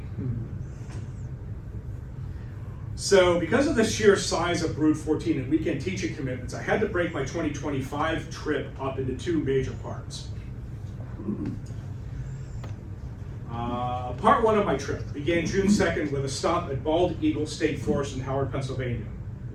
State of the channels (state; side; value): identical; both; correlation 1.00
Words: So because of the sheer size of brood 14 and weekend teaching commitments, I had to break my 2025 trip up into 2 major parts. Part 1 of my trip began June 2nd with a stop at Bald Eagle State Forest in Howard, Pennsylvania.